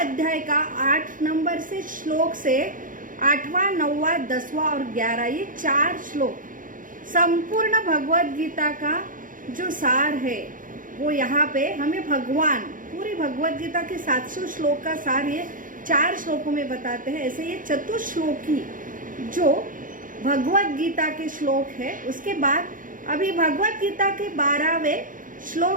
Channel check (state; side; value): late; left; 0.39 ms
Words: का 8 नंबर से श्लोक से 8वां, 9वां, 10वां और 11 ये 4 श्लोक संपूर्ण भगवत गीता का जो सार है वो यहाँ पे हमें भगवान पूरी भगवत गीता के 700 श्लोक का सार ये 4 श्लोकों में बताते हैं। ऐसे ये चतुर्श्लोकी जो भगवत गीता के श्लोक है, उसके बाद अभी भगवत गीता के 12वें